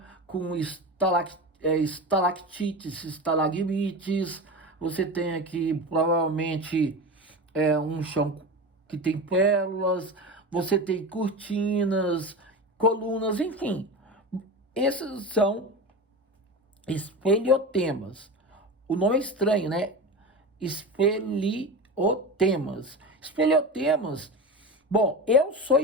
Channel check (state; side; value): normal; both; correlation 0.26